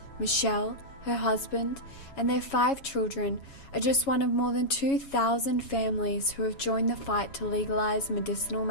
Michelle, her husband, and their 5 children are just one of more than 2,000 families who have joined the fight to legalise medicinal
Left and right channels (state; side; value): late; right; 7.2 ms